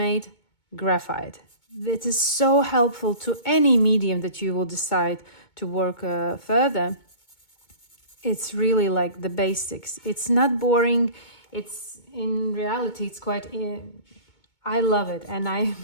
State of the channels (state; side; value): late; right; 2.2 ms